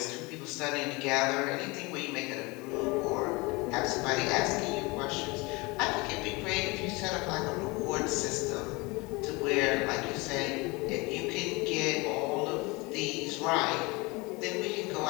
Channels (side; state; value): right; quieter; 25.4 dB